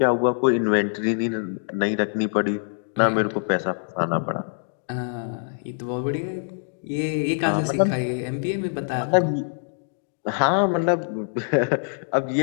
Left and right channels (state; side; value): silent; right; digital silence